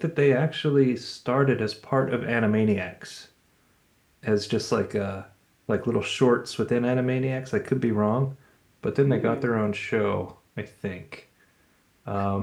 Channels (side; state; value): both; identical; correlation 1.00